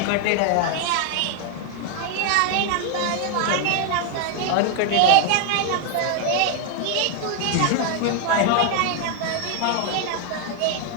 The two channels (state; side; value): different; both; correlation 0.00